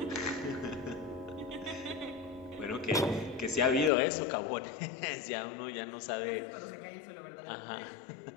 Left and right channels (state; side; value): drops out; right; at 3.9 s